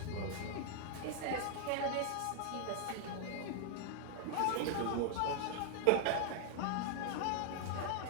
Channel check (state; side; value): different; both; correlation 0.00